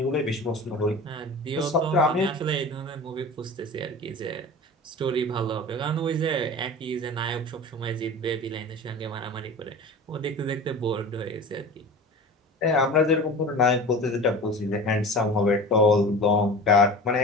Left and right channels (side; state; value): both; normal; correlation 0.34